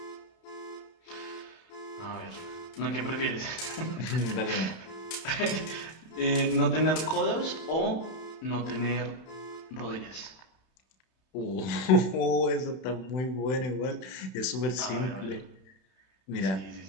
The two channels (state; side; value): late; right; 31 ms